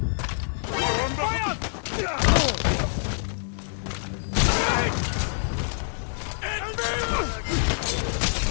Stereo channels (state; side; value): silent; right; digital silence